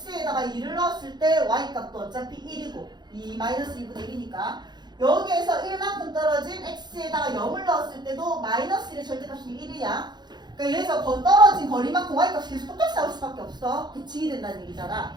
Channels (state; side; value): late; left; 0.21 ms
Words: 2를 넣었을 때 y값도 어차피 1이고 2-2분의 1이니까 여기에서 1만큼 떨어진 x에다가 0을 넣었을 때도 마이너스 1의 절대값이 1이야. 그러니까 여기서 더 떨어진 거리만큼 y값이 계속 똑같이 나올 수밖에 없어. 대칭이 된다는 얘기잖아.